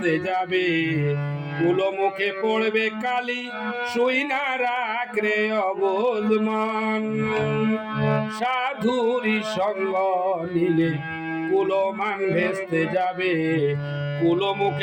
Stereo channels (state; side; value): identical; both; correlation 1.00